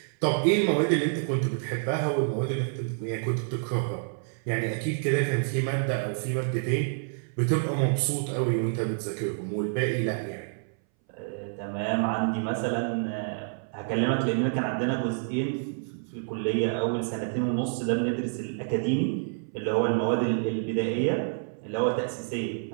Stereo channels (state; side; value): silent; left; 59 dB below the other